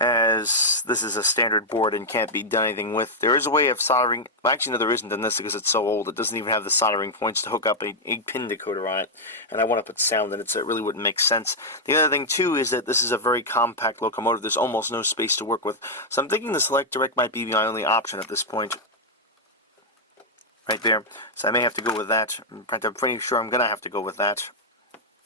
this is a standard board and can't be done anything with. There is a way of soldering. Well, actually, no, there isn't in this because it's so old. It doesn't even have the soldering points to hook up a 8-pin decoder on it, and I want to put sound in it, so it really wouldn't make sense. The other thing, too, is that this is a very compact locomotive. There's almost no space to work with, so I'm thinking the Select Direct might be my only option at this point. Right there. So I may have to go with that. I'm pretty sure I'm going to have to go with that.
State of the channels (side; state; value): both; normal; correlation -0.03